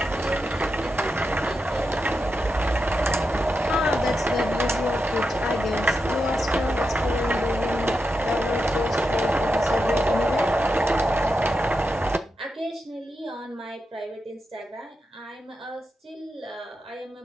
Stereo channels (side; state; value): both; normal; correlation 0.87